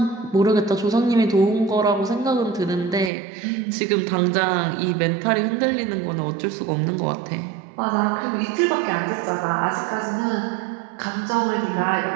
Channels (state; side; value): drops out; left; at 3.1 s